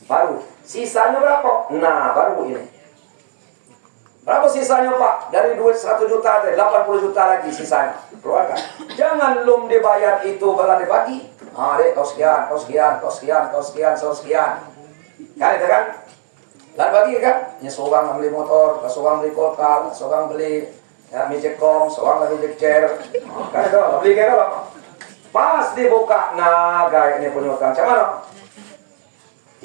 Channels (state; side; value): silent; left; digital silence